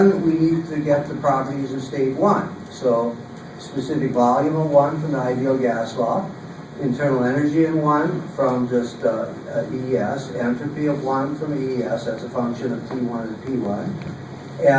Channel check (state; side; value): identical; both; correlation 1.00